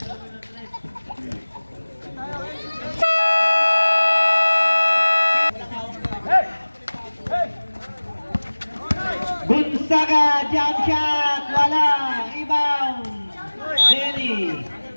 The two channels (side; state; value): both; inverted; correlation -1.00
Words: Gonzaga, jump shot, wala, rebound, Denny,